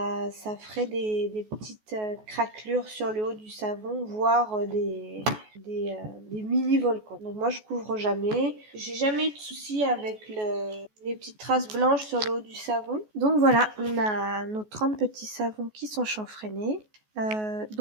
ferait des petites craquelures sur le haut du savon, voire des mini-volcans. Donc moi je couvre jamais. J'ai jamais eu de soucis avec les petites traces blanches sur le haut du savon. Donc voilà, on a nos 30 petits savons qui sont chanfreinés.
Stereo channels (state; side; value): late; left; 14 ms